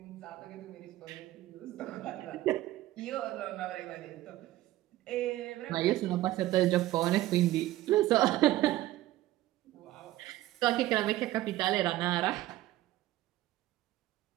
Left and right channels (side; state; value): left; quieter; 15.7 dB